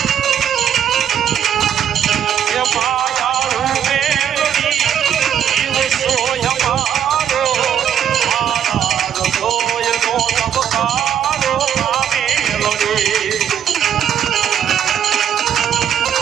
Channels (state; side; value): quieter; left; 9.2 dB